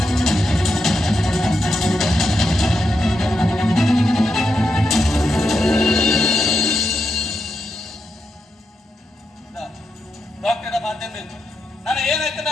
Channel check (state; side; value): normal; both; correlation 0.85